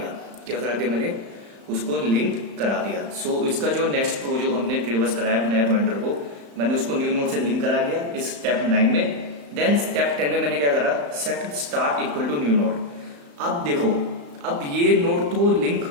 क्या करा दिया मैंने, उसको लिंक करा दिया। सो इसका जो नेक्स्ट प्रो जो हमने ट्रेवर्स कराया नया पॉइंटर को, मैंने उसको न्यू नोड से लिंक करा दिया इस स्टेप 9 में। देन स्टेप 10 में मैंने क्या करा, set start equal to new node. अब देखो, अब ये नोड तो लिंक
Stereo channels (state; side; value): late; left; 35 ms